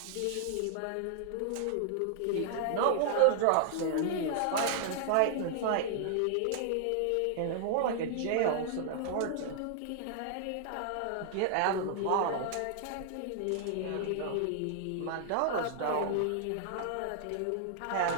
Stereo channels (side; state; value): both; different; correlation -0.01